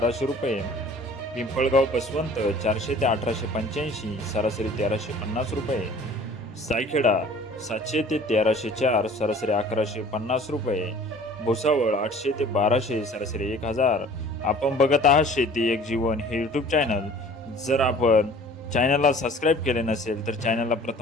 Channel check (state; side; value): normal; both; correlation 0.49